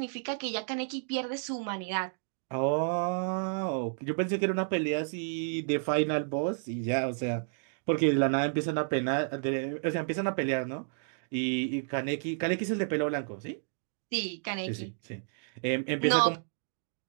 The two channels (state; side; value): silent; left; digital silence